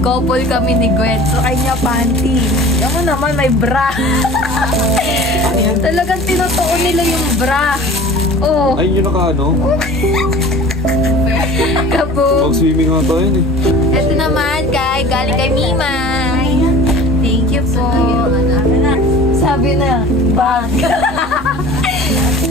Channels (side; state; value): both; normal; correlation 0.42